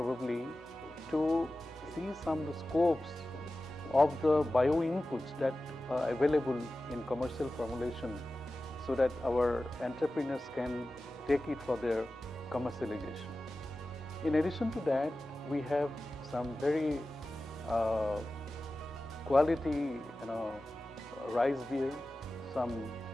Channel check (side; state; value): both; normal; correlation 0.95